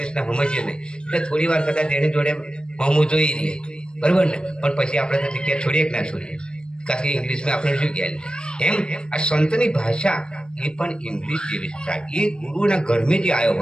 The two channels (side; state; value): right; late; 0.052 ms